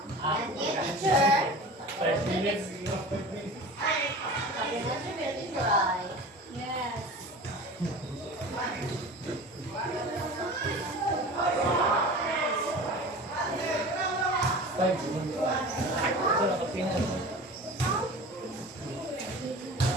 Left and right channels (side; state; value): both; normal; correlation 0.36